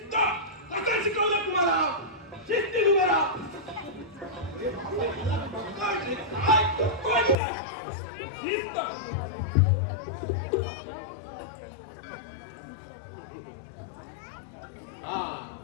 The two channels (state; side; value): drops out; right; at 7.4 s